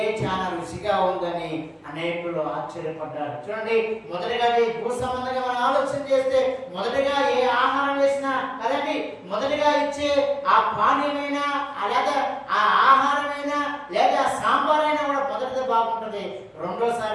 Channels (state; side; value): identical; both; correlation 1.00